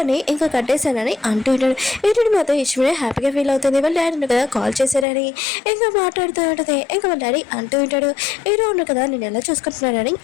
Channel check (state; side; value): drops out; right; at 5.1 s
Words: ఇంకా కట్టేశానని అంటూ ఉంటాడు. హీరోయిన్ మాత్రం ఇష్టమే హ్యాపీగా ఫీల్ అవుతుంది, వాళ్ళ డాడీ కదా కాల్ చేశారని ఇంకా మాట్లాడుతూ ఉంటుంది. ఇంకా వాళ్ళ డాడీ అంటూ ఉంటాడు, హీరో ఉన్న కదా నేను ఎలా చూసుకుంటున్నాడని